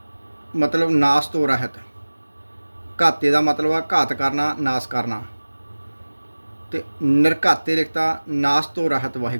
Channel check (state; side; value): inverted; both; correlation -1.00